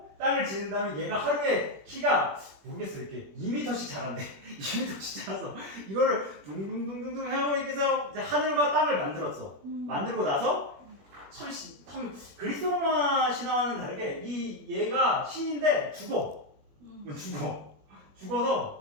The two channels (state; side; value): late; left; 21 ms